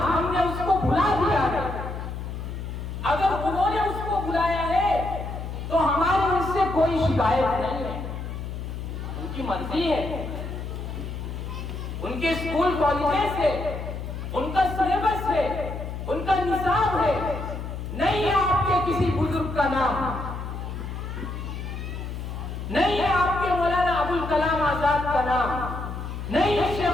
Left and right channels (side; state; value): left; noise; hum, 7 dB below the sound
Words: ہم نے اس کو بھلا دیا ہے۔ اگر انہوں نے اس کو بلایا ہے تو ہماری اس سے کوئی شکایت نہیں ہے، ان کی مرضی ہے، ان کے اسکول کالجز ہے، ان کا سلیبس ہے، ان کا نصاب ہے، نہیں ہے آپ کے کسی بزرگ کا نام، نہیں ہے آپ کے مولانا ابوالکلام آزاد کا نام، نہیں ہے